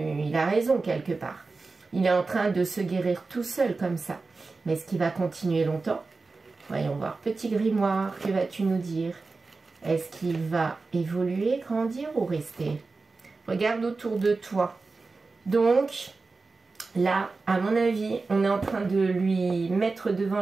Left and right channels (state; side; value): quieter; left; 3.9 dB